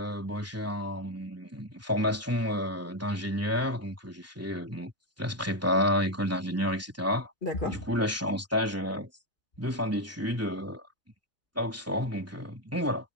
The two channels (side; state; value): both; normal; correlation 0.07